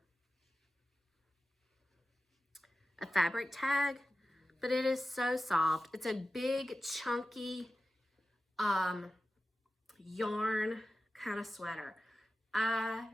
fabric tag, but it is so soft. It's a big, chunky yarn kind of sweater. I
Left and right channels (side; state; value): both; normal; correlation 0.94